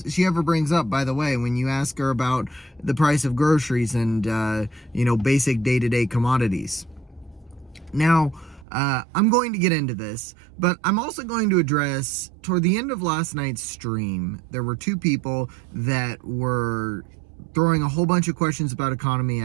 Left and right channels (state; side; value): drops out; left; at 8.7 s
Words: ever brings up, by the way, when you ask her about the price of groceries and basic day-to-day commodities. Now, I'm going to get into this, but I'm also going to address, toward the end of last night's stream, there were two people that were throwing a whole bunch of questions about economy